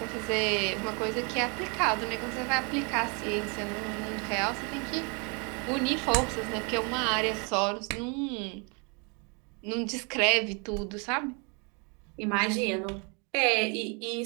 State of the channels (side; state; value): left; quieter; 34.0 dB